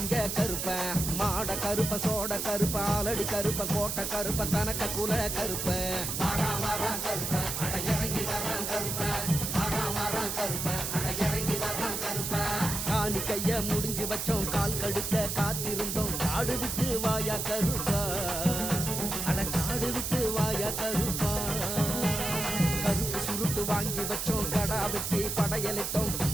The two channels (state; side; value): noise; right; hiss, 3 dB below the sound